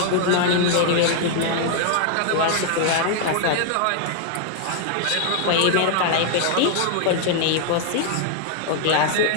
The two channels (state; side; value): different; both; correlation 0.00